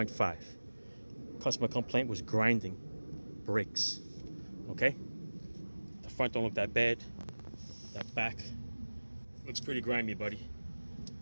Customer complaint was grinding brakes. Okay? The front don't look that bad. That back looks pretty grimy, buddy.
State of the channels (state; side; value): inverted; both; correlation -1.00